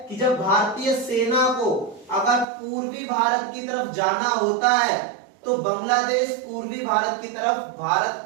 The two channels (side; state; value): left; drops out; at 2.5 s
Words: कि जब भारतीय सेना को अगर पूर्वी भारत की तरफ जाना होता है तो बांग्लादेश पूर्वी भारत की तरफ भारत